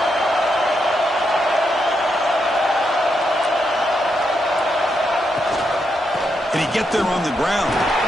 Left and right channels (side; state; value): both; normal; correlation 0.82